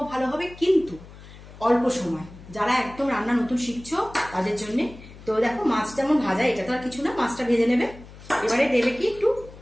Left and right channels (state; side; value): noise; left; hum, 18 dB below the sound